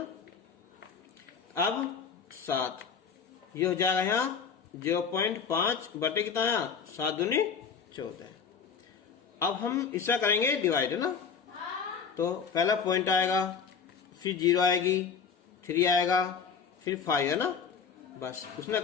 अब 7 ये हो जाएगा यहाँ 0.5 बटे कितना यहाँ 7 दूनी 14। अब हम इसका करेंगे डिवाइड है ना। तो पहला पॉइंट आएगा, फिर 0 आएगी, 3 आएगा, फिर 5 है ना। बस उसने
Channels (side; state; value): right; quieter; 6.3 dB